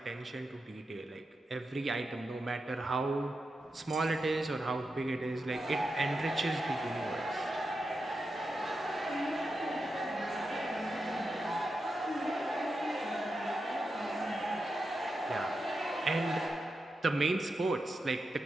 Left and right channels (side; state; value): both; normal; correlation 0.88